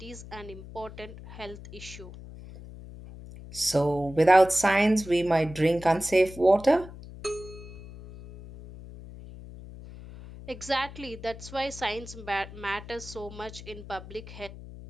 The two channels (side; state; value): left; noise; hum, 15 dB below the sound